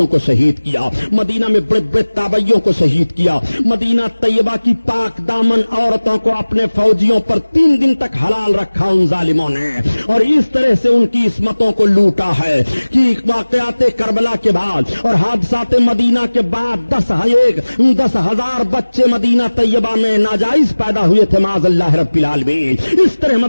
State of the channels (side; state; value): both; inverted; correlation -1.00